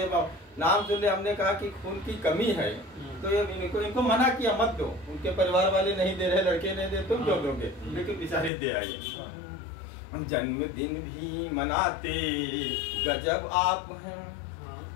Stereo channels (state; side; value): drops out; right; at 8.5 s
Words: नाम सुनने हमने कहा कि खून की कमी है, तो इनको मना किया मत दो। उनके परिवार वाले नहीं दे रहे, लड़के नहीं दे, तुम क्यों दोगे, लेकिन बेचारे दे आए। जन्मदिन भी मनाते गजब आप हैं।